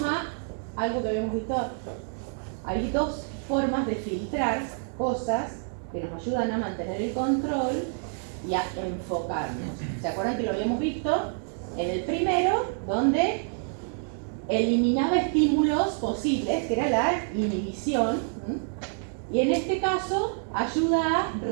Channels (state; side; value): silent; left; 60 dB below the other